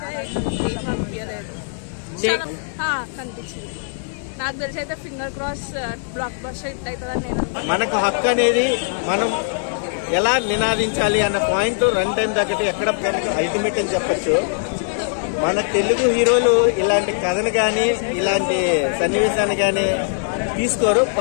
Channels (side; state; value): right; silent; digital silence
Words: అనిపించలేదు, కనిపించింది. నాకు తెలిసి అయితే finger cross block buster hit అవుతుందని నేను. మనకు హక్కు అనేది మనం ఎలా నినాదించాలి అన్న పాయింట్ రన్ టైం దగ్గర ఎక్కడ అల్టిమేట్ అని చెప్పచ్చు. మన తెలుగు హీరోలు ఇలాంటి కథను కానీ ఇలాంటి సన్నివేశాన్ని కానీ తీసుకోరు.